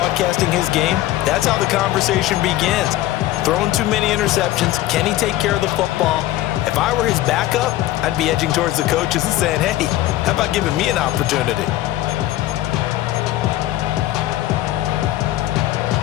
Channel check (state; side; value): quieter; right; 15.1 dB